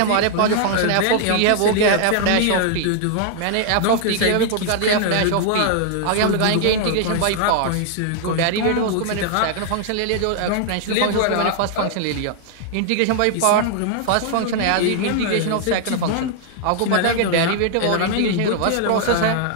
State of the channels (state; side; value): different; both; correlation 0.00